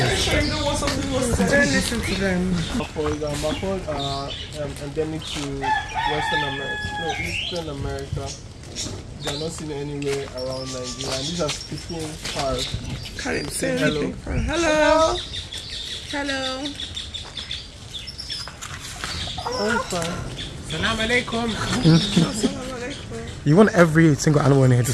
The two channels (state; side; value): identical; both; correlation 1.00